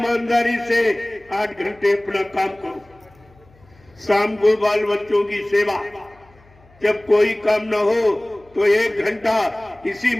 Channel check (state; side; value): noise; left; hum, 29 dB below the sound